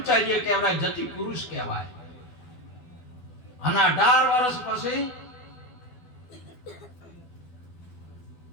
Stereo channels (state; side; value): late; right; 12 ms